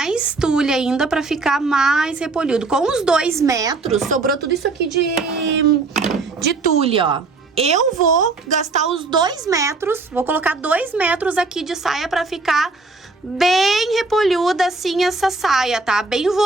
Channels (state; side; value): quieter; left; 3.8 dB